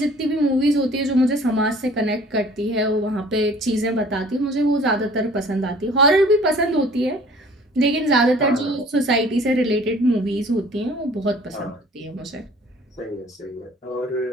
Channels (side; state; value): both; normal; correlation 0.51